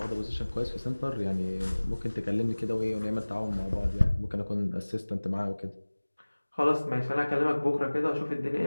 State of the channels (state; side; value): inverted; both; correlation -1.00